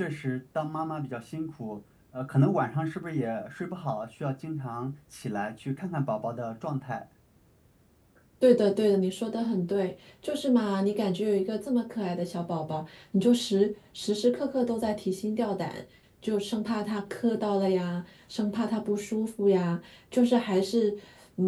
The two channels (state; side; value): identical; both; correlation 1.00